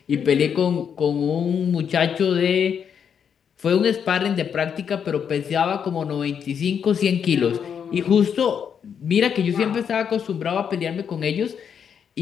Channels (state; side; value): quieter; right; 7.6 dB